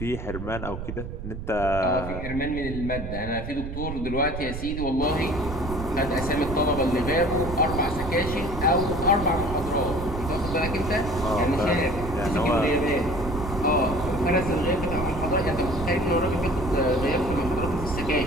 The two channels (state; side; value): noise; right; rumble, 7 dB below the sound